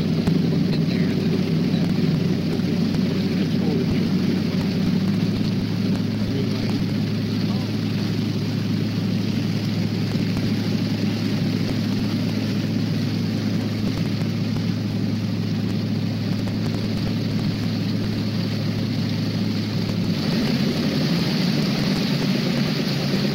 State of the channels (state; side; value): identical; both; correlation 1.00